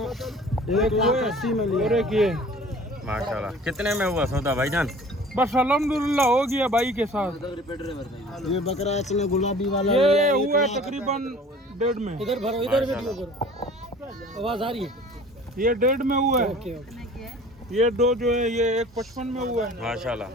वो है, और एक ये। माशाल्लाह। कितने में हुआ सौदा भाईजान? बस अल्हम्दुलिल्लाह हो गया भाई के साथ। ये बकरा इसमें गुलाबी वाला ये हुआ है तकरीबन 1.5 में। इधर भरो, इधर वीडियो करो, आवाज आ रही है। ये 1.5 में हुआ है। ये 2 जो है ये 1.55 में हुआ है, माशाल्लाह।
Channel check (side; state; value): both; normal; correlation 0.46